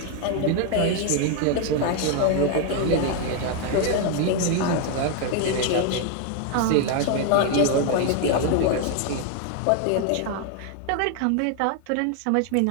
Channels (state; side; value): different; both; correlation 0.01